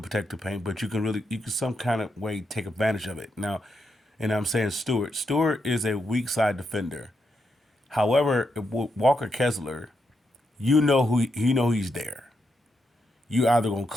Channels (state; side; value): normal; both; correlation 0.82